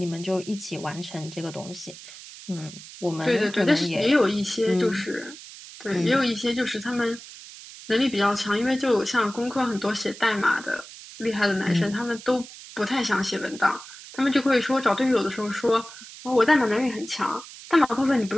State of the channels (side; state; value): right; noise; hiss, 16 dB below the sound